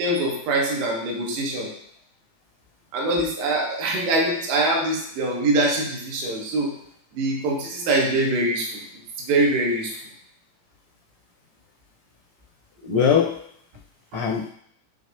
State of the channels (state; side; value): late; left; 18 ms